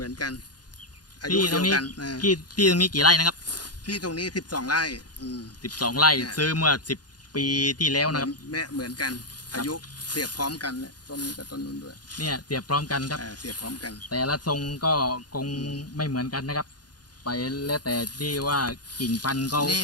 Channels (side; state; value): right; late; 0.69 ms